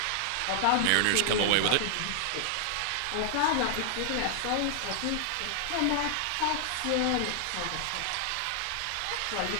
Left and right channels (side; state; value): both; different; correlation 0.00